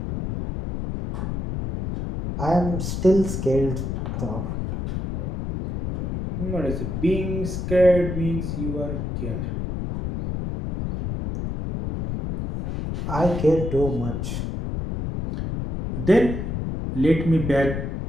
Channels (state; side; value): noise; left; rumble, 4 dB below the sound